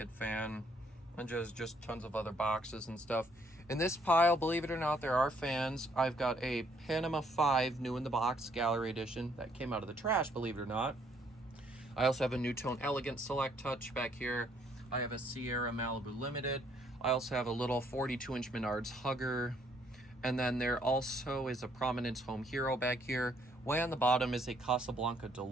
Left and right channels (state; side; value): normal; both; correlation 0.67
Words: fan, and just tons of other boxes and stuff. In this pile, believe it or not, there are fans. I've got a Panama 5 new in the box gallery edition that came out of the trash, believe it or not. I also have a NuTone Elegant Select Touch back here. I have a Sierra Malibu Limited. I also have a little 42-inch Menards Hugger. And then there also is a Prominence Home Hero back here. Way on the bottom is a Casablanca